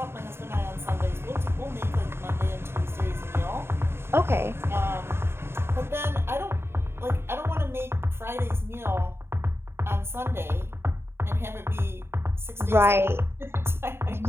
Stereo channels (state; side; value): late; left; 0.12 ms